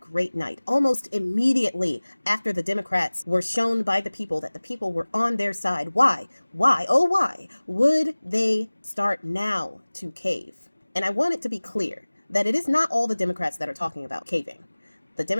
night, almost immediately after the Democrats were shown by the people that the people were on their side, why, oh why, would they start now to cave? And I want it to be clear that it is not all the Democrats that are talking about caving. The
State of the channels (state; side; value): inverted; both; correlation -1.00